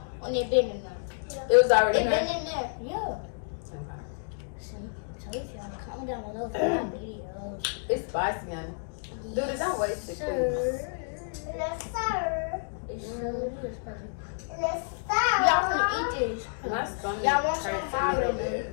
when it been in there? It was already in It there. been in there, yeah. Okay. So if y'all comment down below for my videos. It's spicy, honey. Dude, don't waste it. Sir. Yes, sir. It's so good, spicy. Yes, sir. Y'all finna eat this. My stomach Y'all want some hurts of a little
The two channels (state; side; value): silent; right; digital silence